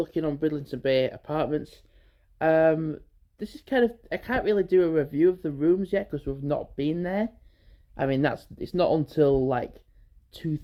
on Bridlington Bay Apartments. This is kind of, I can't really do a review of the rooms yet because we've not been there. I mean, it's not until like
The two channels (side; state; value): both; identical; correlation 1.00